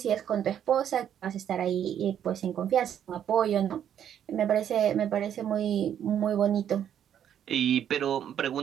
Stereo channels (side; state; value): left; quieter; 9.6 dB